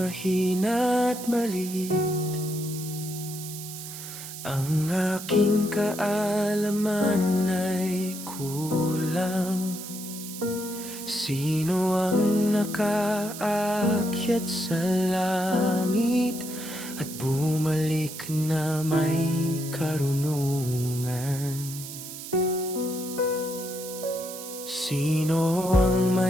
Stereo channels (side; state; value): right; noise; hiss, 10 dB below the sound